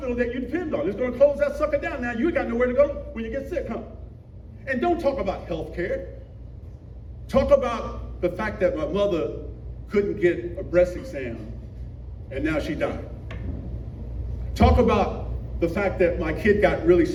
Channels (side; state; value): both; identical; correlation 1.00